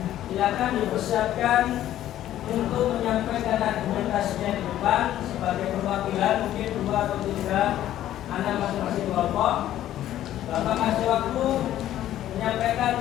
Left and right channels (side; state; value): right; quieter; 12.6 dB